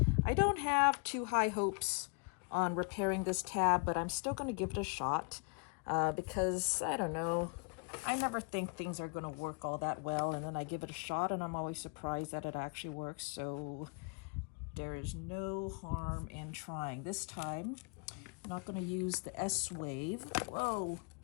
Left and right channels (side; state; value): right; quieter; 35.7 dB